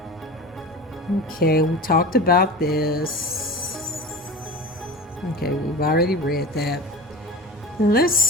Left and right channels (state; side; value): normal; both; correlation 0.33